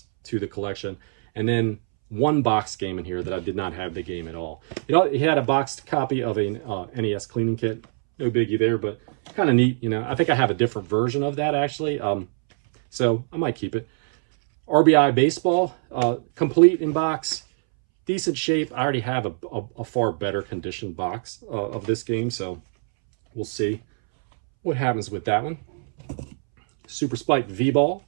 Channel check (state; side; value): silent; left; 63 dB below the other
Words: to the collection, and then 1 box game in here that I did not have the game at all. You know, he had a boxed copy of a NES cleaning kit. No biggie there, but kind of neat. You know, I think I have a different version of that actually, so I might keep it. RBI Baseball, complete in box, decent shape. I already have a far better conditioned box of this game, so we'll see what happens with that one. Super Spike V-Ball,